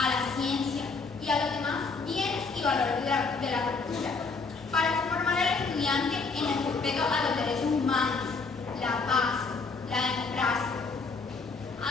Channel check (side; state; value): right; quieter; 4.4 dB